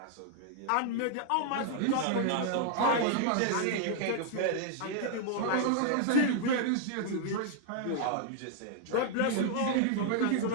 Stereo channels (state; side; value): different; both; correlation 0.00